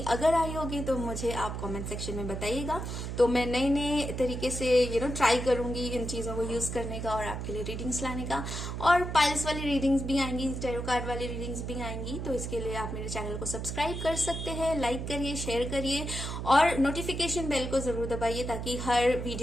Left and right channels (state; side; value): noise; right; hum, 5 dB below the sound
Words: अगर आई होगी तो मुझे आप कमेंट सेक्शन में बताइएगा, तो मैं नए नए तरीके से ट्राई करूंगी इन चीजों को यूज करने का और आपके लिए रीडिंग्स लाने का। और पाइल्स वाली रीडिंग्स भी आएंगी, टैरो कार्ड वाली रीडिंग्स भी आएंगी, तो इसके लिए आप मेरे चैनल को सब्सक्राइब कर सकते हैं, लाइक करिए, शेयर करिए, और नोटिफिकेशन बेल को जरूर दबाइए ताकि हर